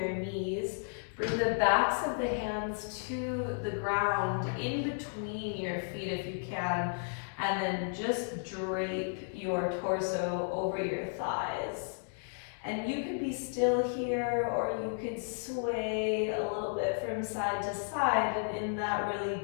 knees. Bring the backs of the hands to the ground in between your feet if you can, and then just drape your torso over your thighs. And you could be still here, or you could sway a little bit from side to side, and in that really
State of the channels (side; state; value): right; silent; digital silence